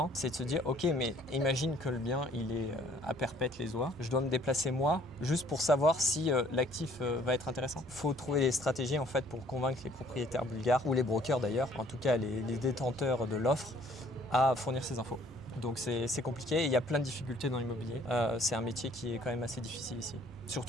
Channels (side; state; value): both; normal; correlation 0.59